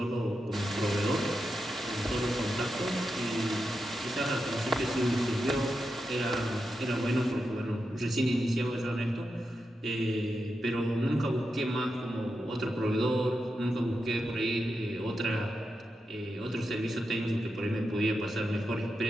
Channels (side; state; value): both; normal; correlation 0.88